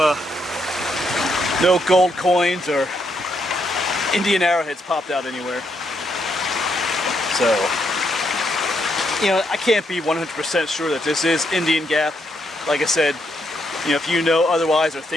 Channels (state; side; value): normal; both; correlation 0.77